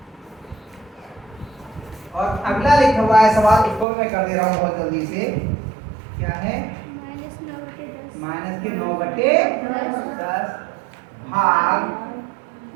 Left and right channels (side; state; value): left; drops out; at 3.9 s